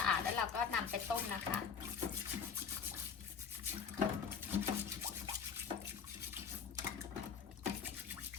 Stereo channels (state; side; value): quieter; right; 6.6 dB